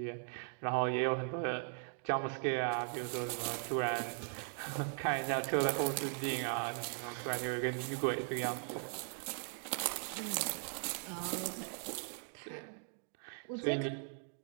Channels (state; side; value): silent; left; 52 dB below the other